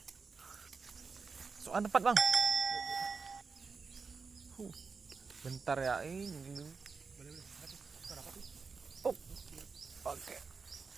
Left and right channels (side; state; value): left; quieter; 4.9 dB